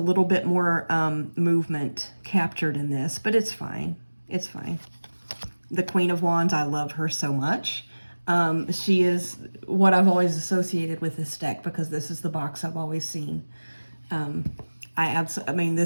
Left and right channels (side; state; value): both; inverted; correlation -1.00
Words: bit more movement captured in this, but it's fine. It's fine. The Queen of Wands, I love her so much. She is what I've always associated with this deck because this is the box I've always seen. I